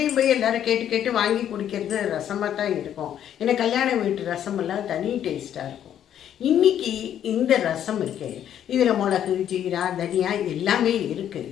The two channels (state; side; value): quieter; right; 10.2 dB